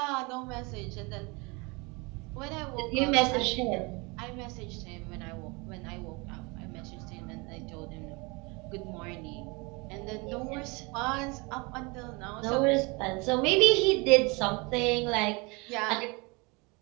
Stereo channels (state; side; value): quieter; left; 27.7 dB